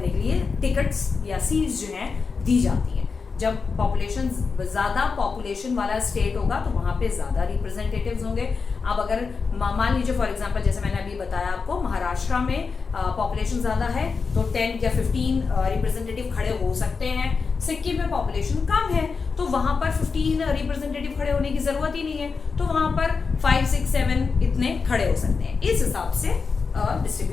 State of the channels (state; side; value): quieter; right; 5.0 dB